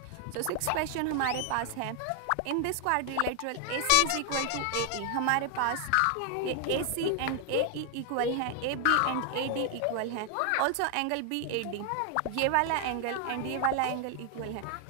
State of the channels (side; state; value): both; different; correlation 0.00